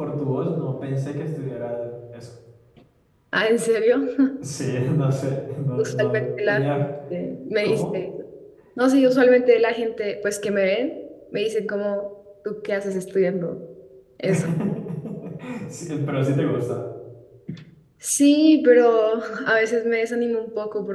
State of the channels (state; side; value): identical; both; correlation 1.00